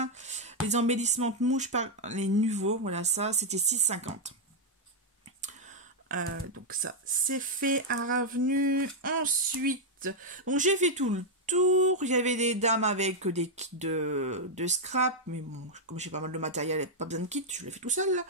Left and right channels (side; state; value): both; normal; correlation -0.01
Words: Les embellissements de mouches par les nouveaux. Voilà, ça, c'était 6,50. Donc ça, c'est fait à revenu. Ensuite, donc j'ai fait tout le tour. Il y avait des dames avec des kits de scrap. Mais bon, comme j'ai pas mal de matériel, pas besoin de kit, je l'ai fait tout seul. Là.